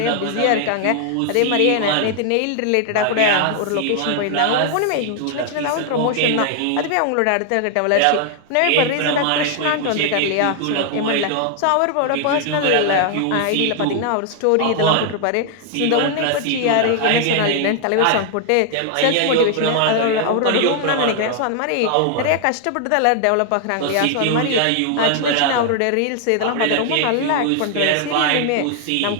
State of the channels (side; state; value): both; different; correlation 0.00